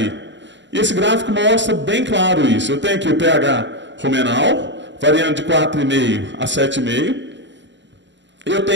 E esse gráfico mostra bem claro isso. Eu tenho aqui o pH rumenal, variando de 4,5 a 7,5. Eu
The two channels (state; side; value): late; left; 0.53 ms